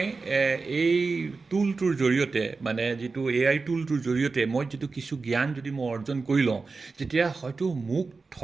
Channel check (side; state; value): left; quieter; 4.2 dB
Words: এই টুলটোৰ জৰিয়তে যিটো AI টুলটোৰ জৰিয়তে মই যিটো কিছু জ্ঞান যদি মই অৰ্জন কৰি লওঁ, তেতিয়া হয়তো মোক